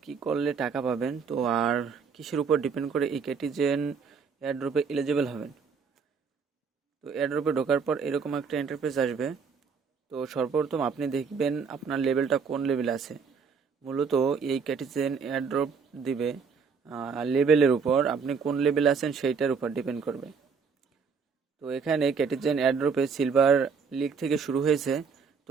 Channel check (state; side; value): quieter; left; 5.7 dB